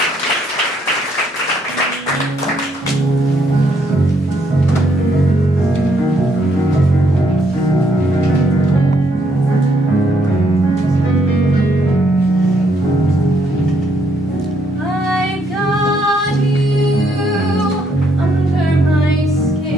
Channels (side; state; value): both; normal; correlation 0.72